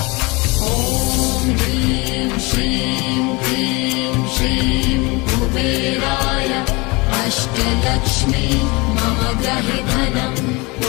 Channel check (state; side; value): quieter; right; 25.7 dB